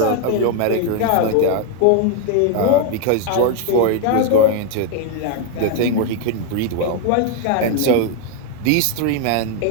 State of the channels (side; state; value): both; different; correlation 0.01